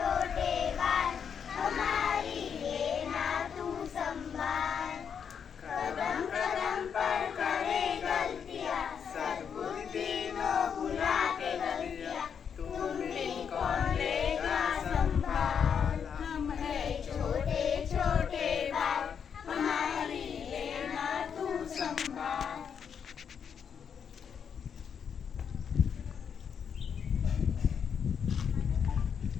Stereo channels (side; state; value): right; quieter; 7.3 dB